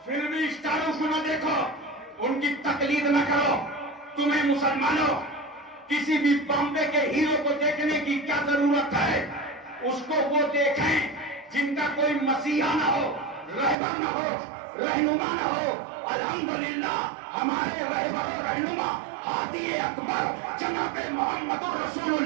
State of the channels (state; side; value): drops out; left; at 13.8 s